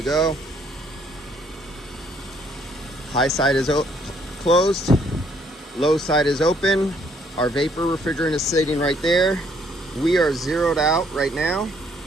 go. High side is closed. Low side is open. Our vapor refrigerant is sitting right there. We are zeroed out right now.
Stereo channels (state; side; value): normal; both; correlation 0.66